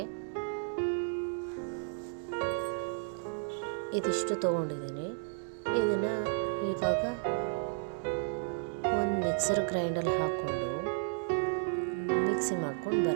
ಇದಿಷ್ಟು ತೊಗೊಂಡಿದ್ದೀನಿ. ಇದನ್ನು ಇವಾಗ ಒಂದು ಮಿಕ್ಸರ್ ಗ್ರೈಂಡಲ್ಲಿ ಹಾಕ್ಕೊಂಡು ಮಿಕ್ಸಿ ಮಾಡ್ಕೊಂಡು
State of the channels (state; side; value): silent; left; digital silence